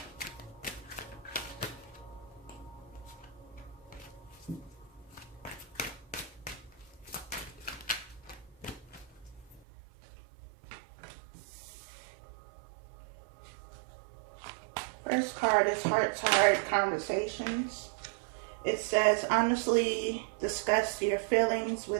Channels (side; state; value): left; drops out; at 9.6 s